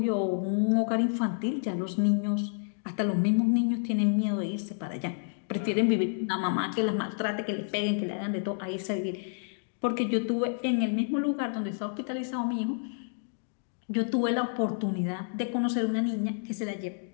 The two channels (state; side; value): silent; right; digital silence